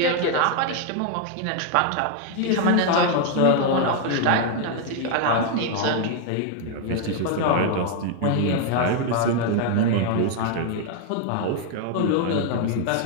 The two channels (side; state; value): both; different; correlation 0.00